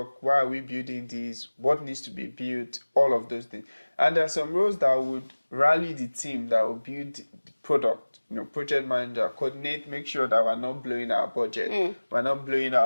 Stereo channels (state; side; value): inverted; both; correlation -1.00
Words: Why are we building this? What needs to be built? All of those things. And there are some roles that would rally the team that will build the product. You know, project manager, coordinate, make sure that we're not blowing our budget, we're not blowing